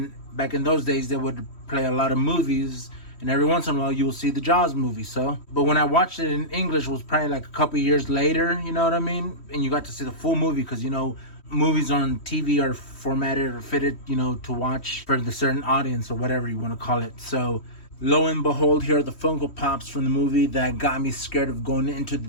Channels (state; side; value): late; right; 3.1 ms